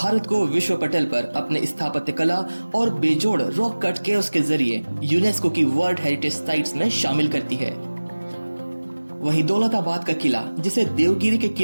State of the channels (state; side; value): inverted; both; correlation -1.00